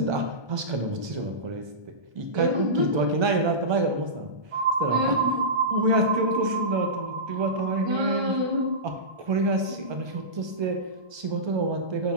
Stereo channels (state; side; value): late; left; 1.3 ms